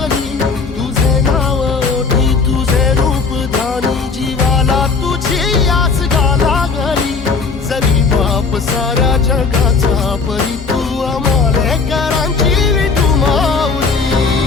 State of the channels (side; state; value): right; quieter; 4.7 dB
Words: तुझे नाव ओठी तुझे रूप ध्यानी जीवाला तुझी आस गा लागली जरी बाप साऱ्या जगाचा परी